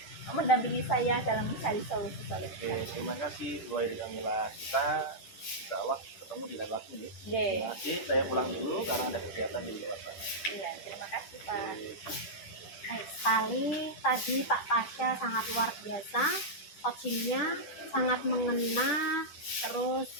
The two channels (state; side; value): late; right; 10 ms